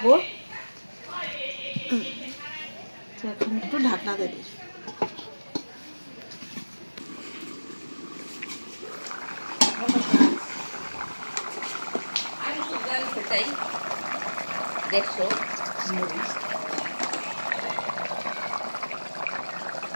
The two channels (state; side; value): inverted; both; correlation -1.00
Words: এখন একটু ঢাকনা দিয়ে দিই।